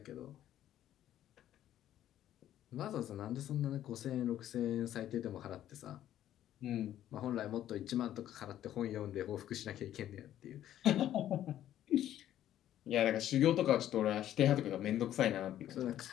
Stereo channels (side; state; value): right; quieter; 12.0 dB